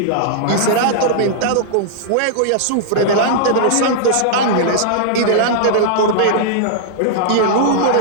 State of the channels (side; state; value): both; different; correlation -0.01